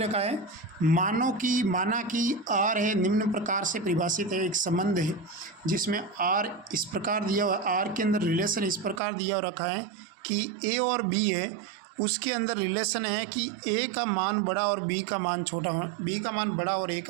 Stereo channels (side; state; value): left; drops out; at 9.0 s